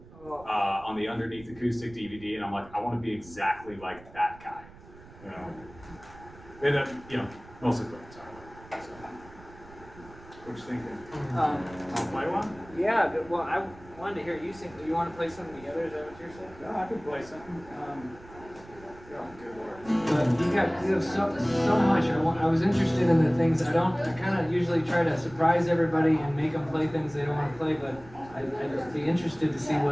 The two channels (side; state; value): right; noise; rumble, 21 dB below the sound